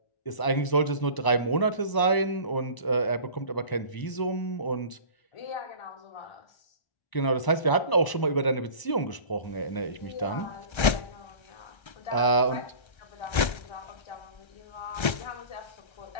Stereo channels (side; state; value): right; late; 1.3 ms